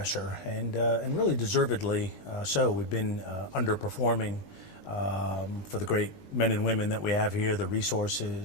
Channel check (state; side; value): late; right; 20 ms